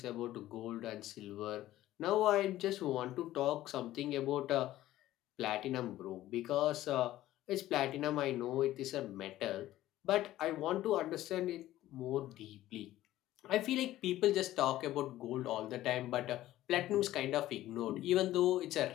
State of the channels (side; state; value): right; quieter; 14.7 dB